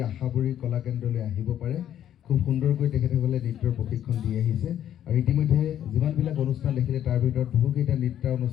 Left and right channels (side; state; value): right; quieter; 10.7 dB